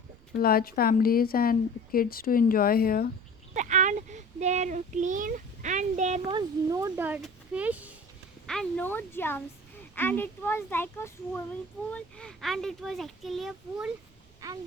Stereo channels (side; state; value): right; noise; rumble, 28 dB below the sound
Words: large families and kids to enjoy here. And they're clean, and there was no dirt, fish, and no germs. And it was like a swimming pool, and it was actually a pool, and